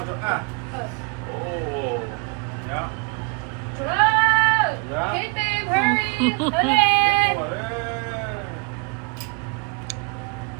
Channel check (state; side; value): quieter; left; 33.8 dB